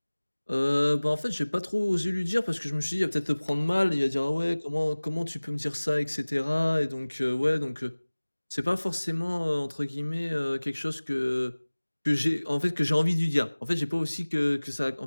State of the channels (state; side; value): inverted; both; correlation -1.00